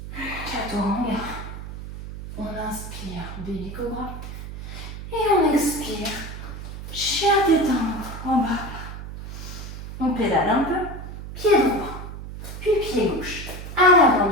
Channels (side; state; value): right; noise; hum, 10 dB below the sound